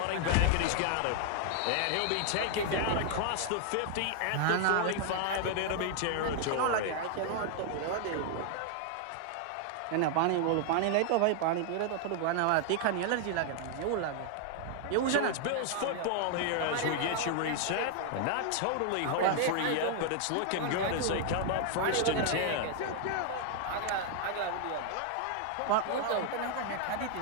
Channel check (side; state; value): both; different; correlation 0.00